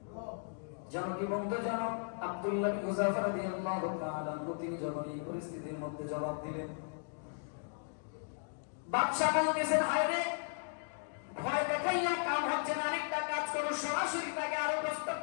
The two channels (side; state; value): right; silent; digital silence